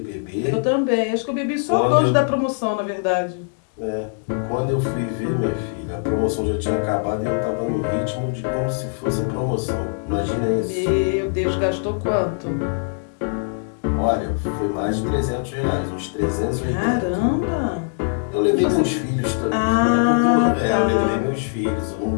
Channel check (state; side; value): silent; right; digital silence